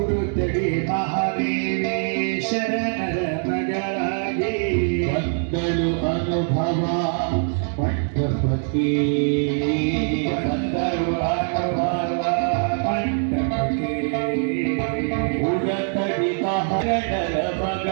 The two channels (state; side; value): silent; left; 56 dB below the other